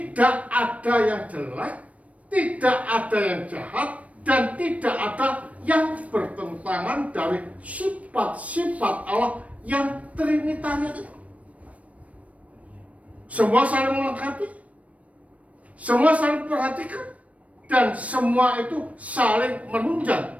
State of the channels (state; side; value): late; left; 0.066 ms